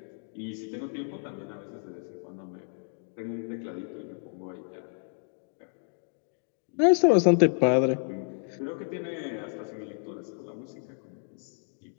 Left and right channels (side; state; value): right; silent; digital silence